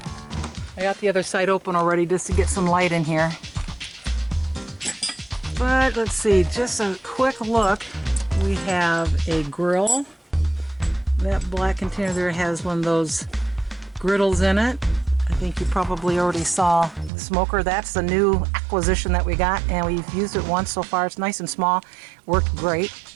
I got the other side open already just to get some light in here. But let's see, just a quick look. We have a grill. That black container there has one of those griddles in it. I think you probably already saw the smoker. That's the new acquisition that we got, and we've used it once so far. It's nice and small, worked great.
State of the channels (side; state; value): left; drops out; at 17.1 s